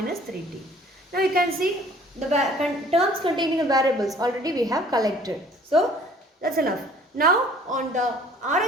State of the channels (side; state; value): both; normal; correlation 0.53